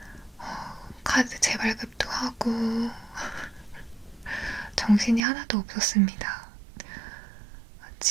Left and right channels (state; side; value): drops out; left; at 5.2 s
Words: 카드 재발급도 하고 정신이 하나도 없었습니다.